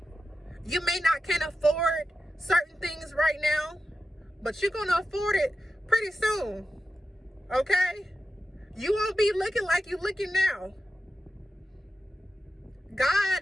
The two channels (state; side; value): normal; both; correlation 0.91